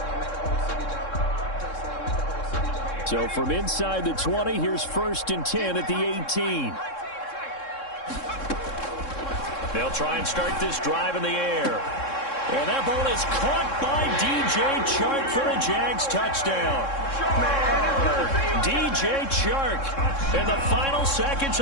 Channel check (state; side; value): late; right; 3.7 ms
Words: So from inside the 20, here's first and 10 at the 18. They'll try and start this drive in the air. And that ball is caught by DJ Chark for a Jags touchdown. DJ Chark in the final seconds